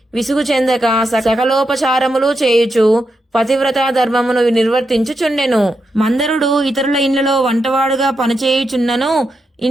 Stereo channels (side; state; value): both; normal; correlation 0.85